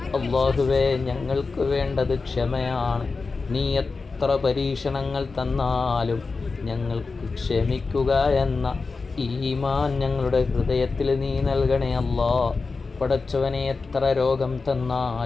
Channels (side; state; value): right; quieter; 4.2 dB